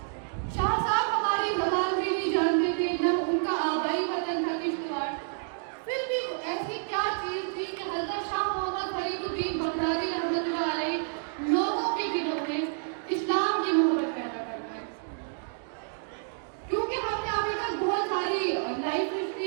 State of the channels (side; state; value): left; silent; digital silence